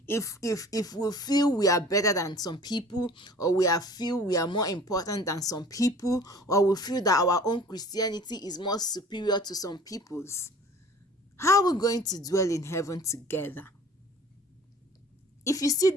if we feel we are better than some people, or feel we are more important than some people, or we feel that our own Christianity is more superior to some people's? How are we going to dwell in heaven together? If you see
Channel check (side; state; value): both; normal; correlation 0.46